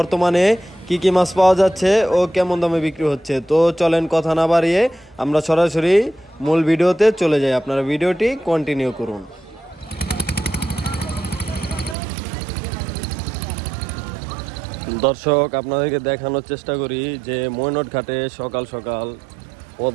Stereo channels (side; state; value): left; drops out; at 12.0 s